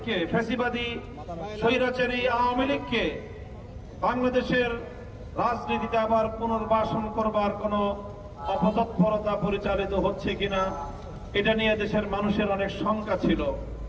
ফ্যাসিবাদী স্বৈরাচারী আওয়ামী লীগকে বাংলাদেশের রাজনীতিতে আবার পুনর্বাসন করবার কোন অপতৎপরতা পরিচালিত হচ্ছে কিনা, এটা নিয়ে দেশের মানুষের অনেক শঙ্কা ছিল।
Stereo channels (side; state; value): both; identical; correlation 1.00